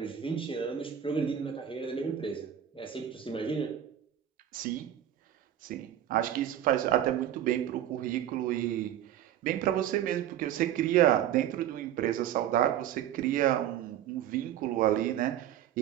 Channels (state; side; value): quieter; left; 10.8 dB